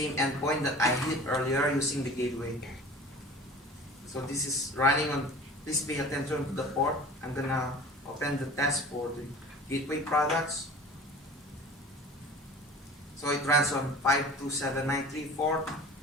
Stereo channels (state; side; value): normal; both; correlation 0.41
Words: endpoint that I hit earlier using the gateway. So this is running on, please pay attention to the port. I'm gonna open the test for the gateway products. So it runs on 527934.